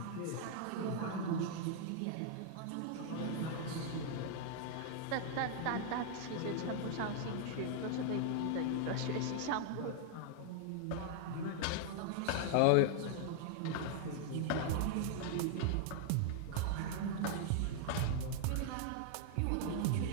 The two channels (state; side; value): different; both; correlation 0.00